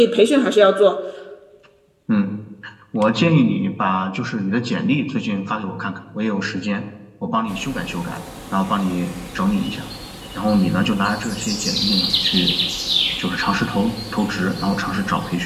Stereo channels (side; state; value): both; identical; correlation 1.00